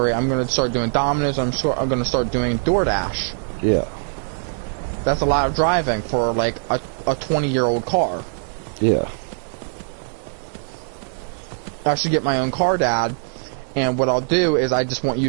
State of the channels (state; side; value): silent; left; digital silence